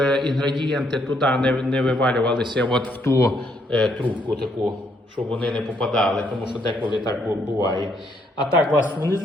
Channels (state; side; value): normal; both; correlation 0.72